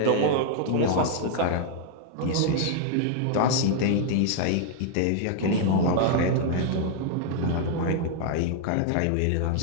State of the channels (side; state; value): both; different; correlation 0.00